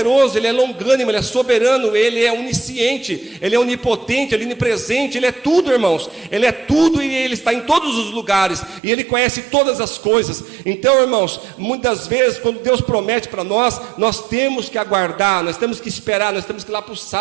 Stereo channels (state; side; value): drops out; left; at 8.8 s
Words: Ele é longânimo, Ele é soberano, Ele é onisciente, Ele é onipotente, Ele é onipresente, Ele é tudo, irmãos. Ele é tudo e Ele está em todos os lugares, e Ele conhece todas as coisas. Então, irmãos, muitas vezes quando Deus promete para nós, nós temos que aguardar, nós temos que esperar, nós temos que ir lá para o